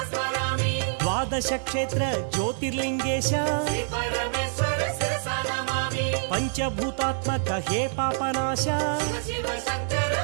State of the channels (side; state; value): left; silent; digital silence